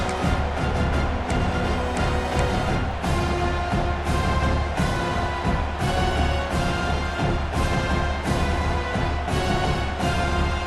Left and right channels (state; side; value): identical; both; correlation 1.00